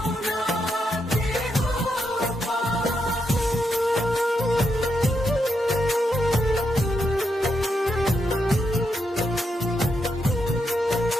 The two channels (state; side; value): normal; both; correlation 0.82